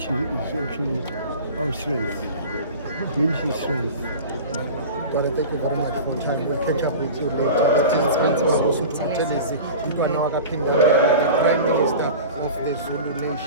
is actually our strength. Unity is strength. Brother, thank you very much for time. We'll catch up with you later. Let's speak to Mangosuthu Buthelezi, the Prime Minister of the Zulu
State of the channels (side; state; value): both; inverted; correlation -0.34